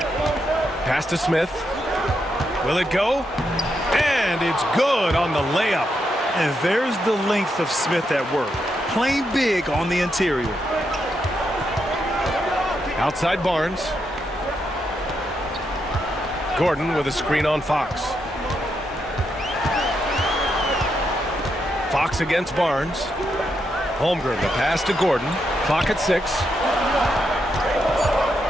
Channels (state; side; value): normal; both; correlation 0.82